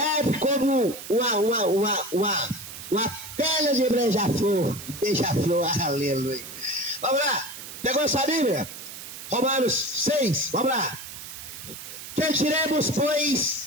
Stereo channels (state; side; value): noise; right; hiss, 12 dB below the sound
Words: como uma pedra de beija-flor. Beija-flor, aleluia. Vamos lá. Pegou essa Bíblia? Romanos 6, vamos lá. Que diremos,